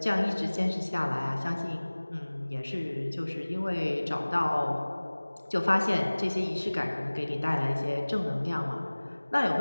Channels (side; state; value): both; inverted; correlation -1.00